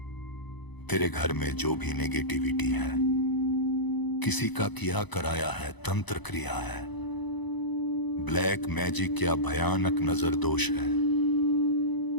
तेरे घर में जो भी नेगेटिविटी है, किसी का किया कराया है, तंत्र क्रिया है, ब्लैक मैजिक या भयानक नजर दोष है,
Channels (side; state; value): right; late; 1.0 ms